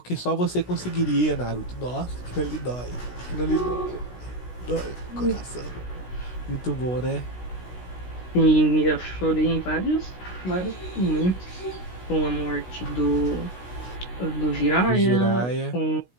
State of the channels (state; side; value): late; right; 16 ms